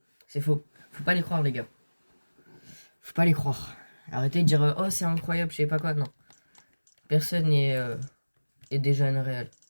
C'est faux. Faut pas les croire, les gars. Faut pas les croire. Arrêtez de dire oh, c'est incroyable, je sais pas quoi. Non. Personne est déjà Unreal.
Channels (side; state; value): both; inverted; correlation -1.00